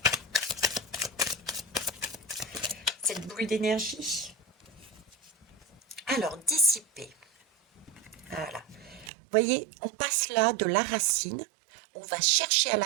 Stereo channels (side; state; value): left; drops out; at 9.1 s